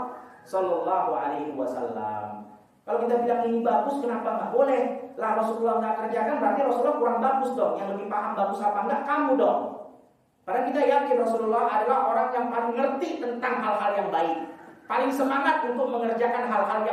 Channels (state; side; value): identical; both; correlation 1.00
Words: Shallallahu Alaihi Wasallam. Kalau kita bilang ini bagus, kenapa nggak boleh? Lah Rasulullah nggak kerjakan, berarti Rasulullah kurang bagus dong. Yang lebih paham bagus apa enggak, kamu dong. Padahal kita yakin Rasulullah adalah orang yang paling ngerti tentang hal-hal yang baik, paling semangat untuk mengerjakan hal-hal